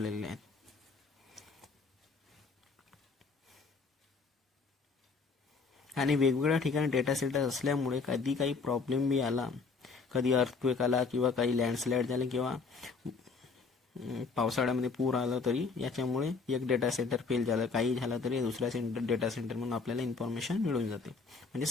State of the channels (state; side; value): quieter; right; 4.7 dB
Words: आहेत. आणि वेगवेगळ्या ठिकाणी डेटा सेंटर असल्यामुळे कधी काही प्रॉब्लेम बी आला, कधी अर्थक्वेक आला किंवा काही लँडस्लाइड झाले किंवा पावसाळ्यामध्ये पूर आला, तरी याच्यामुळे एक डेटा सेंटर फेल झालं, काही झालं तरी दुसऱ्या डेटा सेंटर म्हणून आपल्याला इन्फॉर्मेशन मिळून जाते, म्हणजे